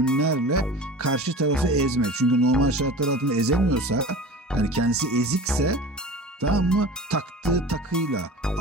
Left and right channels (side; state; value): both; normal; correlation 0.36